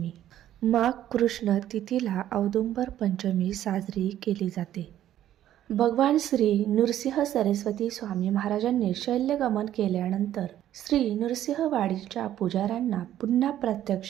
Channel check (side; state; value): left; quieter; 12.0 dB